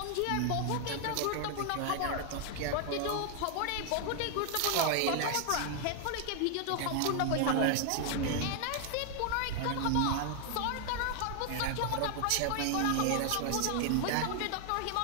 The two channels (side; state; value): both; different; correlation 0.00